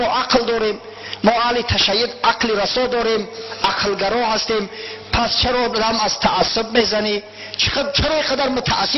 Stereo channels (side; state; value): both; identical; correlation 1.00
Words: عقل داریم، ما اهل تشیع عقل رسا داریم، عقلگرا هستیم، پس چرا دم از تعصب میزنی؟ چرا اینقدر